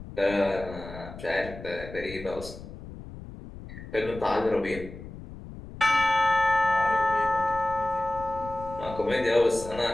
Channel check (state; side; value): noise; left; rumble, 13 dB below the sound